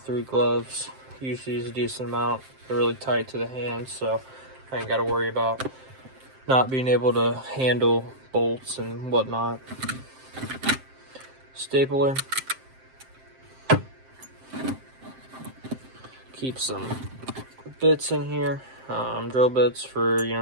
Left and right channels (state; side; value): late; left; 7.6 ms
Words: gloves. Use these a decent amount. They're really tight to the hands, so I ain't got to worry about not being able to handle bolts and whatnot. Stapler. Keep some bits in here. Drill bits for,